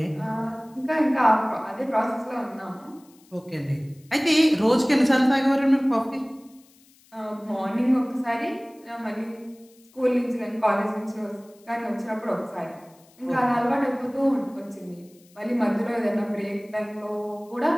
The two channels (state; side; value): noise; left; hiss, 29 dB below the sound